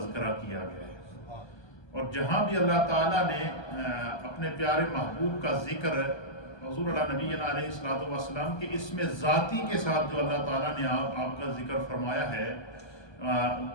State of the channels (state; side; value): late; right; 1.3 ms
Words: کیا گیا ہے۔ اور جہاں بھی اللہ تعالیٰ نے اپنے پیارے محبوب کا ذکر حضور اللہ نبی علیہ السلام کے اسم ذاتی کے ساتھ جو اللہ تعالیٰ نے آپ کا ذکر فرمایا ہے،